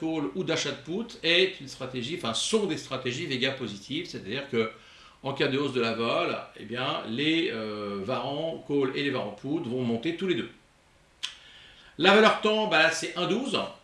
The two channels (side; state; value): both; identical; correlation 1.00